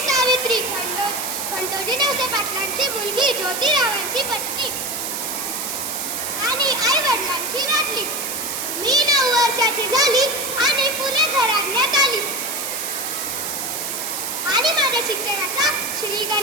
सावित्री खंडोजी नवसे पाटलांची मुलगी, ज्योतिरावांची पत्नी आणि आई वडिलांची लाडली. मी 9 वर्षाची झाली आणि फुले घराण्यात आली आणि माझ्या शिक्षणाचा श्री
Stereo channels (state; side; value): noise; right; hiss, 4 dB below the sound